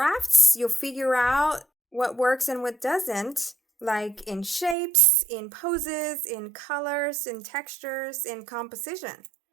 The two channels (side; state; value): left; drops out; at 4.8 s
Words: you'll figure out what works and what doesn't, like in shapes, in poses, in colors, in textures, in composition.